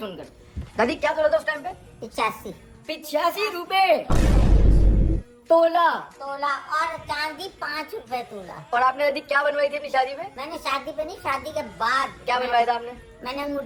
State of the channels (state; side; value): identical; both; correlation 1.00